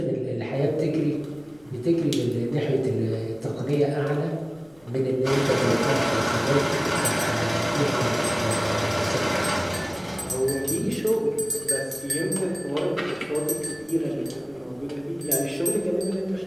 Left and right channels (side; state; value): left; noise; rumble, 29 dB below the sound